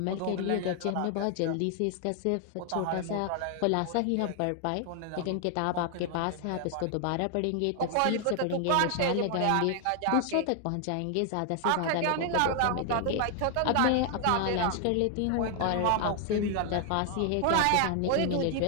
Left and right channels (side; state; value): both; different; correlation 0.00